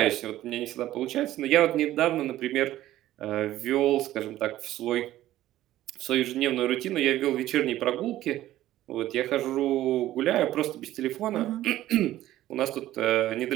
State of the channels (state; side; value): quieter; left; 14.3 dB